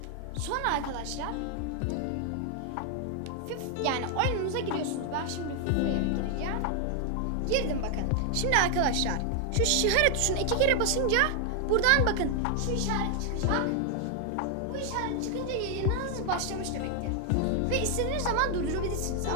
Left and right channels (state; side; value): different; both; correlation 0.00